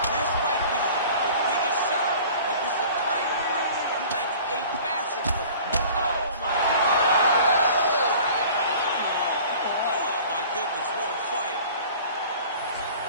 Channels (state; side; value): inverted; both; correlation -0.45